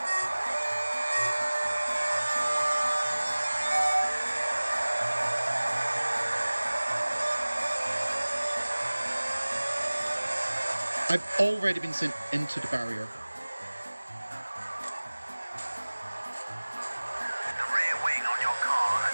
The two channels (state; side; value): inverted; both; correlation -1.00